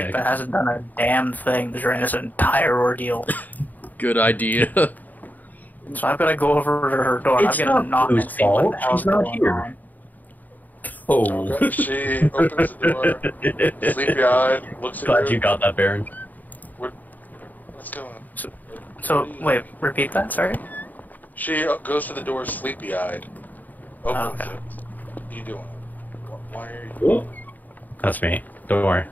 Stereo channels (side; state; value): right; late; 0.083 ms